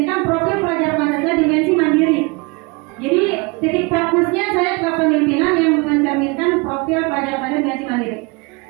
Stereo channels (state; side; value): quieter; left; 28.0 dB